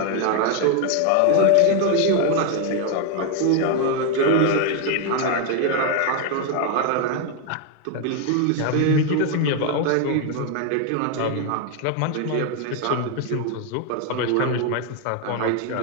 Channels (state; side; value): different; both; correlation 0.01